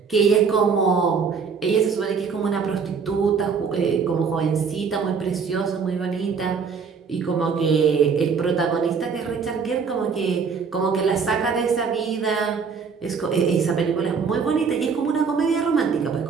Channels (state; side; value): quieter; left; 5.7 dB